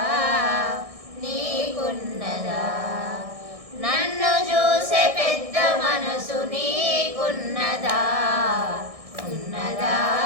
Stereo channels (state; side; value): late; left; 1.6 ms